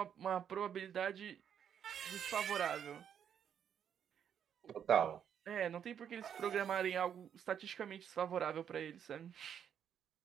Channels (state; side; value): quieter; left; 8.6 dB